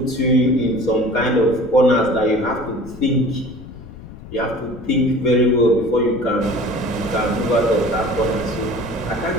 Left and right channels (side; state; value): left; noise; rumble, 16 dB below the sound